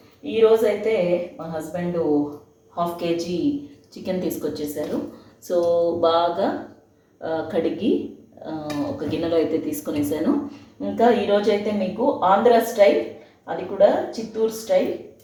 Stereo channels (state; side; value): identical; both; correlation 1.00